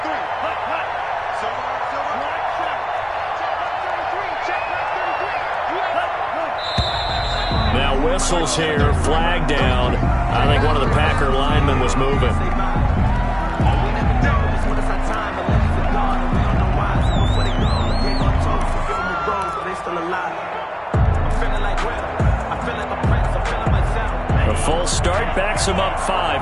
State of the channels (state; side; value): identical; both; correlation 1.00